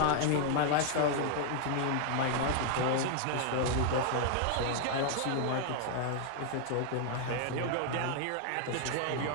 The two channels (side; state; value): both; different; correlation 0.00